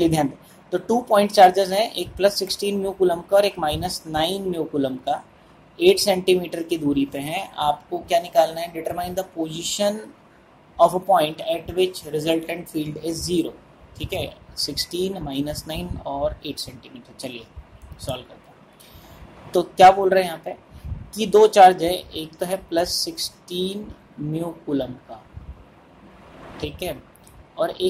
ध्यान दें। तो 2 पॉइंट चार्जेस हैं, एक +16 म्यू कूलम का और एक -9 म्यू कूलम का। 8 सेंटीमीटर की दूरी पे हैं, आपको क्या निकालना है, determine the position of a point eight which resultant field is 0। ठीक है, 16 माइनस 9 और 8 सेंटीमीटर। चलिए सॉल्व करते हैं। तो क्या बोल रहे हैं यहाँ पे कि दो चार्ज है, एक तो है +16 म्यू कूलम का, ठीक है, और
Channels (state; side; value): identical; both; correlation 1.00